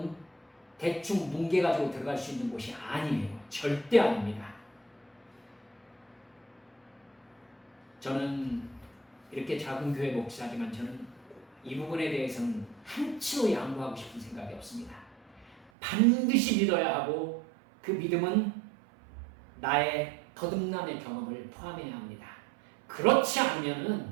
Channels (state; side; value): drops out; left; at 15.7 s